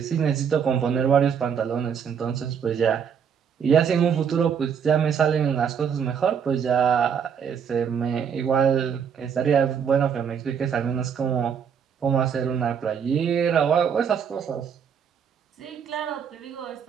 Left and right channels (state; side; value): quieter; left; 7.4 dB